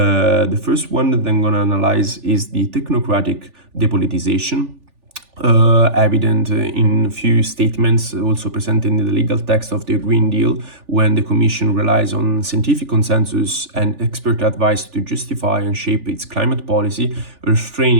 first one that I'm gonna analyze is the technocratic depolitization. Evident in few statements also presented in the legal text of the Green Deal, when the Commission relies on scientific consensus and expert advice to justify and shape its climate policy,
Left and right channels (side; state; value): left; late; 3.4 ms